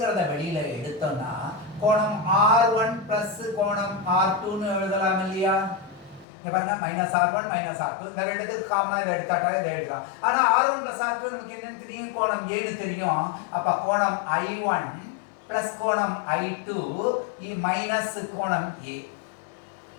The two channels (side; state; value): right; drops out; at 6.2 s